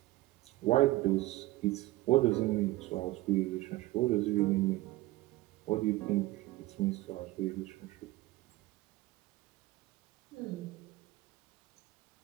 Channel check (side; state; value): left; quieter; 18.5 dB